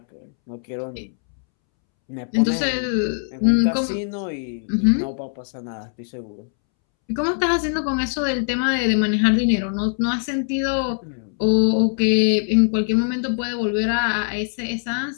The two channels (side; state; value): right; silent; 64 dB below the other